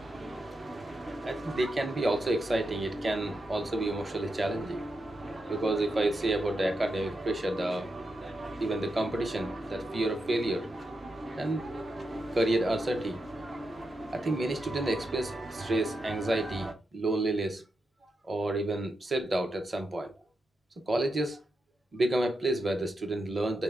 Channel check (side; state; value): both; normal; correlation 0.86